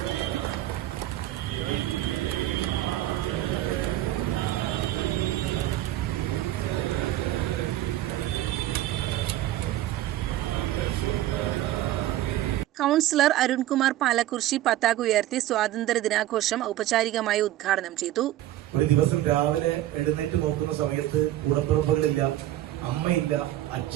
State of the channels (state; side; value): quieter; left; 14.1 dB